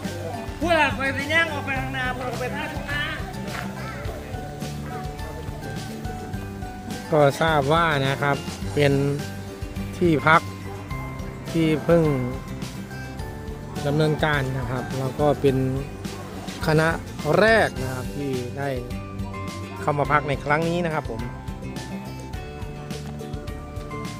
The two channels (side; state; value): both; identical; correlation 1.00